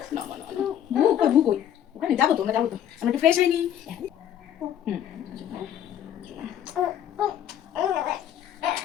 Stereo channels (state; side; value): quieter; right; 10.4 dB